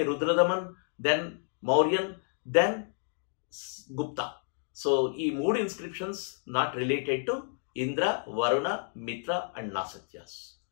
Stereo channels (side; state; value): right; silent; 56 dB below the other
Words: Rudradaman, then Mauryan, then Gupta. So ఈ 3 inscriptions not related to Indra, Varuna, Mitra and Nasatyas.